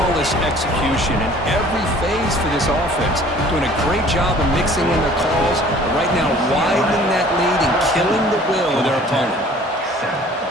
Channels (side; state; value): both; normal; correlation 0.51